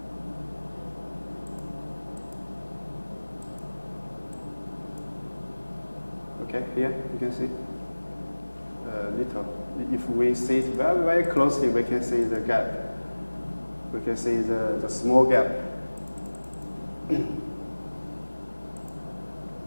Okay, here you can see little. If we see it very closely, we can see the gap. We can see the small gap.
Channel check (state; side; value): inverted; both; correlation -1.00